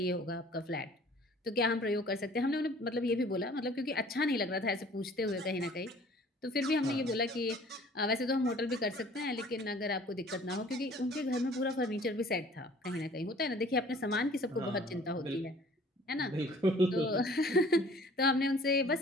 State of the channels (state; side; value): normal; both; correlation 0.52